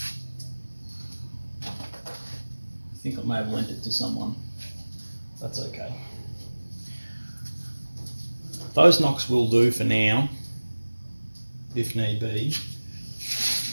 I think I may have lent it to someone. That's okay. Those nocks will do for now, if need be.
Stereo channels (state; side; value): inverted; both; correlation -1.00